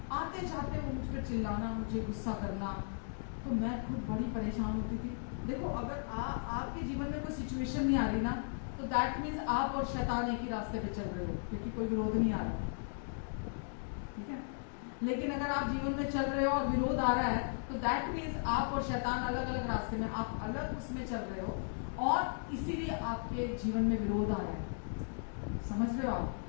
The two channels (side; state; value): right; silent; digital silence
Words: आते जाते वो मुझ पर चिल्लाना, मुझे गुस्सा करना, तो मैं खुद बड़ी परेशान होती थी। देखो अगर आपके जीवन में कोई सिचुएशन नहीं आ रही ना, तो दैट मीन्स आप और शैतान एक ही रास्ते पे चल रहे हो, क्योंकि कोई विरोध नहीं आ रहा, ठीक है। लेकिन अगर आप जीवन में चल रहे हो और विरोध आ रहा है, तो दैट मीन्स आप और शैतान अलग अलग रास्ते में, आप अलग उसमें चल रहे हो, और इसीलिए आपके जीवन में विरोध आ रहा है। समझ रहे हो आप?